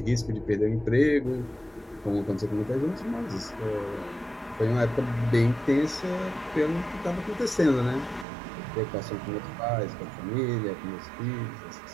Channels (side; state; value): left; drops out; at 8.2 s